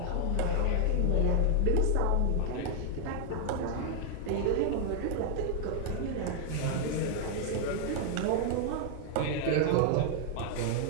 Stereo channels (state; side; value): different; both; correlation 0.00